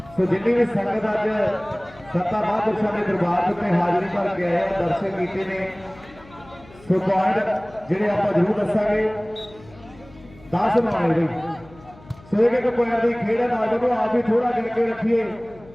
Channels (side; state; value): left; noise; hum, 23 dB below the sound